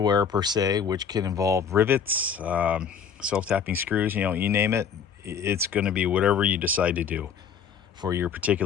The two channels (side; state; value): right; quieter; 7.1 dB